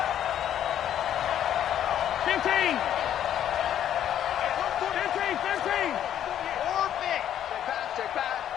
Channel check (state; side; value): quieter; right; 10.5 dB